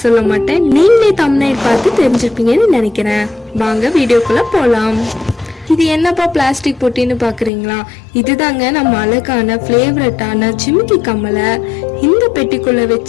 சொல்ல மாட்டேன், நீங்களே தம்ப்நெயில் பார்த்து தெரிஞ்சிருப்பீங்கன்னு நினைக்கிறேன். வாங்க வீடியோக்குள்ள போலாம். இது என்னப்பா பிளாஸ்டிக் பொட்டின்னு பாக்குறீங்களா? இதுதாங்க நம்ம அழகான ஃபேவரட்டான ஜிமிக்கி கம்மலை இந்த பெட்டிக்குள்ள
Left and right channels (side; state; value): right; drops out; at 7.5 s